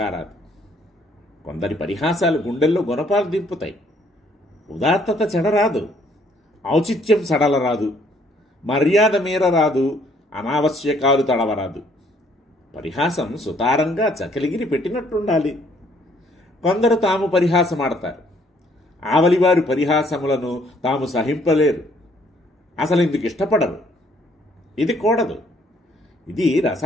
కొందరి పరిహాసాలు గుండెల్లో గుణపాలు దింపుతాయి. ఉదాత్తత చెడరాదు, ఔచిత్యం సడలరాదు, మర్యాద మీరరాదు, అనావశ్యకాలు తడవరాదు. పరిహాసం సుతారంగా చకలిగిరి పెట్టినట్టుండాలి. కొందరు తాము పరిహాసమాడతారు. ఆవలివారి పరిహాసములను తాము సహింపలేరు. అసలు ఇందుకు ఇష్టపడరు. ఇది కూడదు. ఇది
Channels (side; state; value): both; normal; correlation 0.64